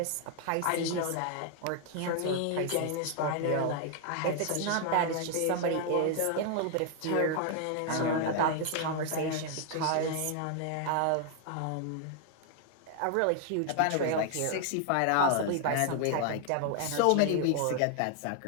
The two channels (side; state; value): both; different; correlation 0.00